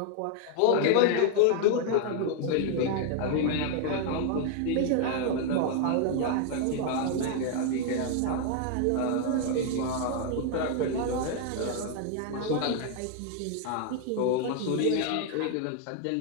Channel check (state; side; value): different; both; correlation 0.00